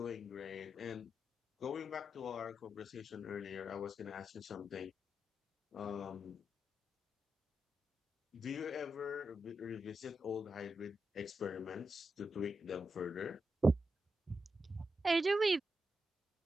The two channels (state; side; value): normal; both; correlation 0.86